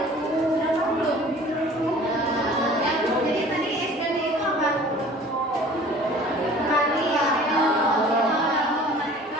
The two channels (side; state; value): both; normal; correlation 0.47